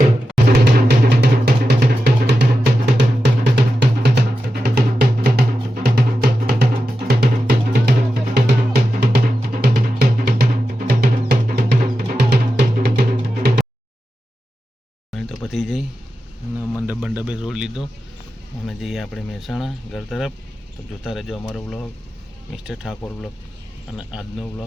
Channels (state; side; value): normal; both; correlation 0.91